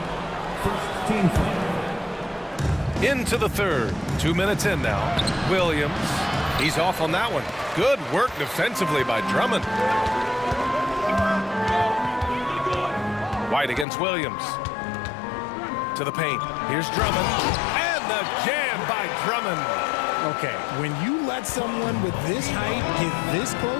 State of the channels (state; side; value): drops out; right; at 13.9 s